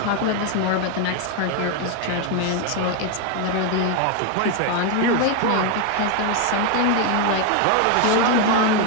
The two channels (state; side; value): different; both; correlation 0.01